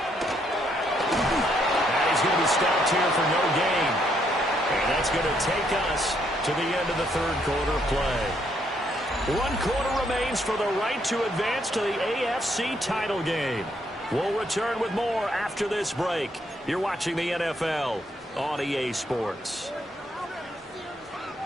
he's going to be stopped here for no gain. And that's going to take us to the end of the third quarter play. 1 quarter remains for the right to advance to the AFC title game. We'll return with more after this break. You're watching the NFL on EA Sports.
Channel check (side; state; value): both; normal; correlation 0.73